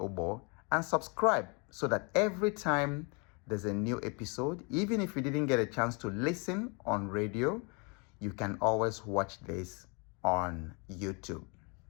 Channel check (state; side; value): quieter; right; 32.6 dB